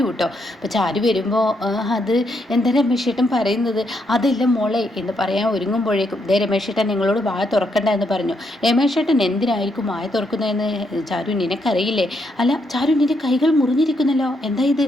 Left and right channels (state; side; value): normal; both; correlation 0.77